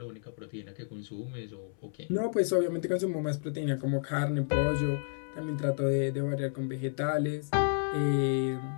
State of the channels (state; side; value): silent; right; 57 dB below the other